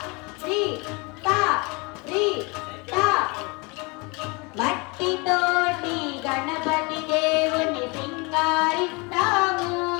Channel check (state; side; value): quieter; right; 28.4 dB